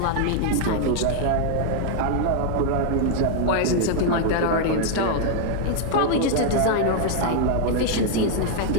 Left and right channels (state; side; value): different; both; correlation 0.00